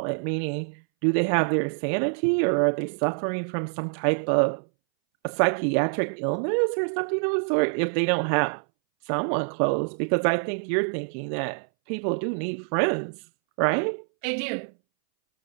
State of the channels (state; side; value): silent; left; 61 dB below the other